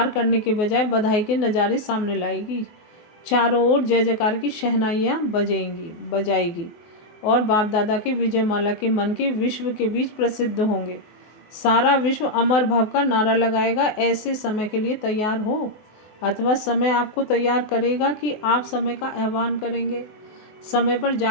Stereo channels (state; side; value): late; right; 24 ms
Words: करने के बजाय बधाई के नज़ारे सामने लाएगी। चारों ओर जय जयकार की शहनाइयाँ बजाएगी और बाप दादा के विजयमाला के मन के विश्व के बीच प्रसिद्ध होंगे। सारा विश्व अमर भव का नारा लगाएगा। ऐसे समय के लिए तैयार हो, अथवा समय आपको तैयार करेगा कि आप समय का आह्वान करेंगे। समय पर